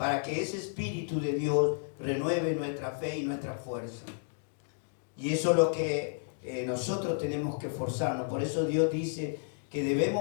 ese Espíritu de Dios renueve nuestra fe y nuestra fuerza. Y eso es lo que nosotros tenemos que esforzarnos. Por eso Dios dice que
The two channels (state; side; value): silent; right; digital silence